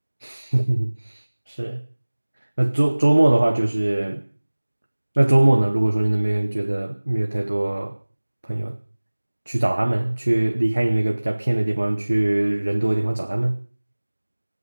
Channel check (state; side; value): inverted; both; correlation -1.00